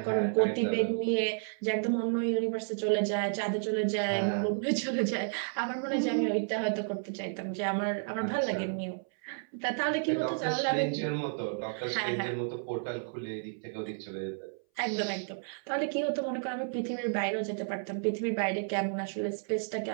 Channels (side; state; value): left; silent; 57 dB below the other